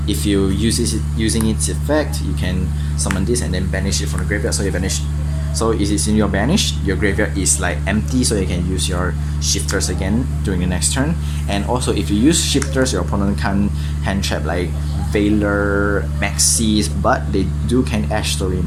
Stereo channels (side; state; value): both; identical; correlation 1.00